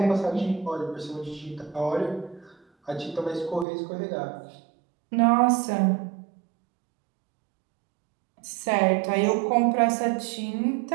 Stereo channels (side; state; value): left; drops out; at 3.7 s